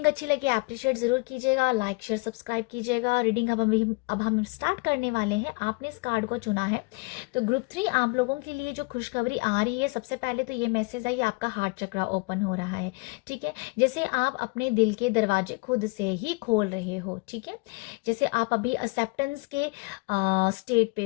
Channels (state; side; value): quieter; right; 28.2 dB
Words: अच्छी लगे अप्रिशिएट ज़रूर कीजिएगा, लाइक शेयर सब्सक्राइब कीजिएगा। रीडिंग अब हम स्टार्ट करने वाले हैं। आपने इस कार्ड को चुना है, तो ग्रुप 3 आप लोगों के लिए जो खुशखबरी आ रही है, सबसे पहले तो ये मैसेज है, ये आपका हार्ट चक्रा ओपन हो रहा है। ठीक है, जैसे आप अपने दिल के दरवाजे खुद से ही खोल रहे हो। ठीक है, जैसे आप अभी एक्सेप्टेंस के स्टेट पे